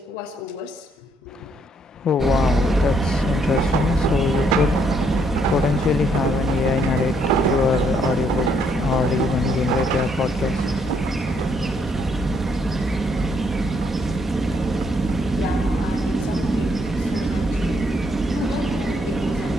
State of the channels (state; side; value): normal; both; correlation 0.71